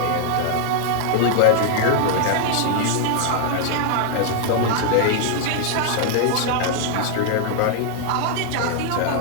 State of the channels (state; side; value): different; both; correlation 0.00